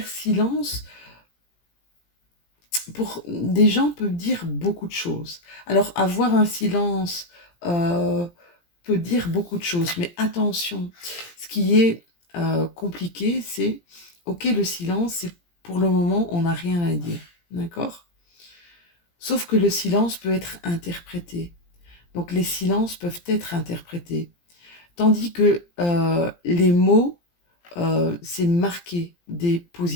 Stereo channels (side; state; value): right; late; 17 ms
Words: silence, pour des gens peut dire beaucoup de choses. Alors, avoir un silence peut dire beaucoup de choses, mais attention, ce qui est compliqué, c'est, ok, le silence, c'est pour le moment, on n'a rien à dire, d'accord? Sauf que le silence peut être interprété. Donc, les silences peuvent être interprétés. Tandis que les mots, c'est marquer des